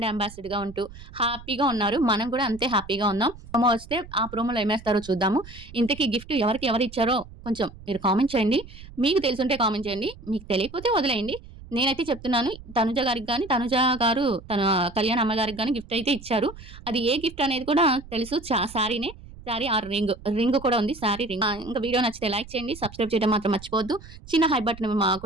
అంబాసిడర్‌గా ఉంటూ హ్యాపీగా ఉన్నారు. మనం కూడా అంతే హ్యాపీగా ఉన్నాం. ప్రోమో వస్తే ఆ ప్రోమోలో ఏమేస్తారో చూద్దాము. ఇంతకీ గిఫ్ట్ ఎవరిచ్చారో కొంచెం మీరు కామెంట్ చేయండి. మీకు తెలిసుంటే కామెంట్ చేయండి. మీకు తెలియకపోతే వదిలేయండి. నేనైతే చెప్తున్నాను తనుజ గారికి గాని, తనుజ గారు తన కళ్యాణ్ అమ్మగారికి గాని గిఫ్ట్ అయితే ఇచ్చారు. అది ఏ గిఫ్ట్ అనేది కూడా తెలుసు. శారీనే. శారీ ఆర్ రింగ్ కూడా ఉంది. శారీ రింగ్. ఇంకా వీడియో నచ్చితే లైక్ చేయండి. సబ్స్క్రైబ్ చేయడం మాత్రం మర్చిపోవద్దు. చిన్న హై బటన్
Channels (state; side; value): noise; right; rumble, 17 dB below the sound